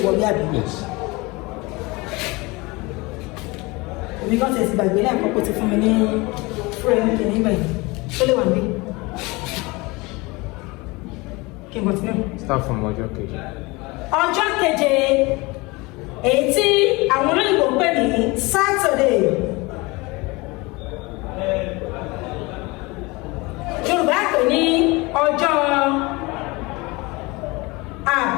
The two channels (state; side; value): quieter; right; 24.3 dB